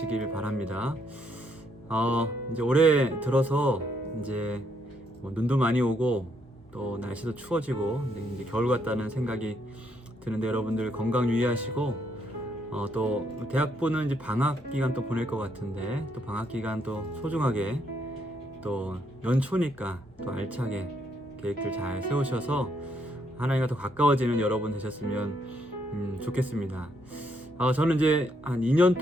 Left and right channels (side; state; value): both; normal; correlation 0.74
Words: 바랍니다. 이제 올해 들어서 이제 뭐 눈도 많이 오고 또 날씨도 추워지고 이제 겨울 같다는 생각이 드는데, 여러분들 건강 유의하시고 또 대학부는 이제 방학 기간 또 보낼 것 같은데, 또 방학 기간 또 소중하게, 또 연초니까 또 알차게 계획들 잘 세우셔서 하나님과 더 가까워지는 여러분 되셨으면 좋겠습니다. 저는 이제 한 2년